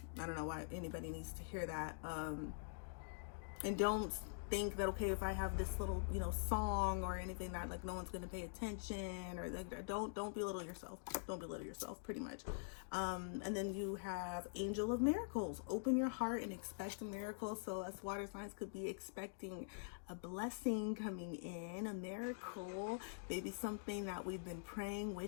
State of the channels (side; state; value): right; silent; digital silence